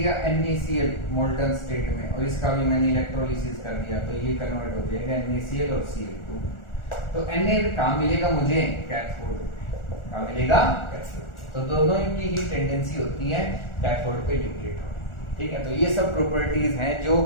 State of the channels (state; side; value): late; right; 1.4 ms